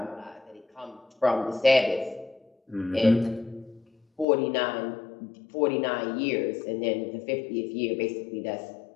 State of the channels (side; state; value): right; drops out; at 4.2 s